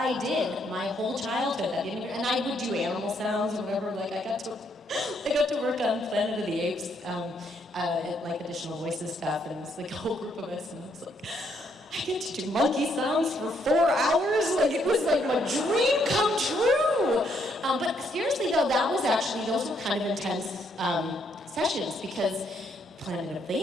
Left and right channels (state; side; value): normal; both; correlation 0.72